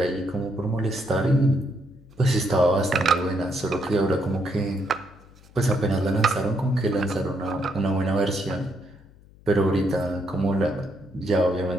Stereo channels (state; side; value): noise; left; hum, 25 dB below the sound